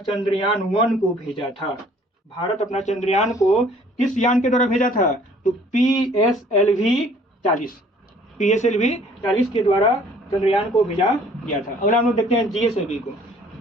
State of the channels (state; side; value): normal; both; correlation 0.56